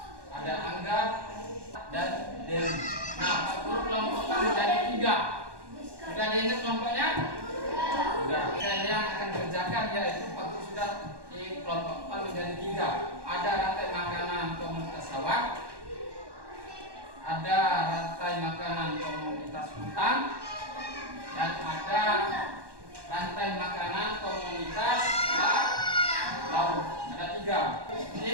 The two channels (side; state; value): left; late; 1.1 ms